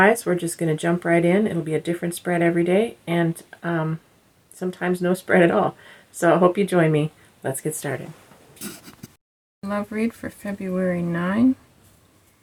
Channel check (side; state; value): both; identical; correlation 1.00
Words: we're just going to jump right in. It'll be a different spread every day and sometimes no spread at all. So I hope you join me. Let's get started. Love read for February 9.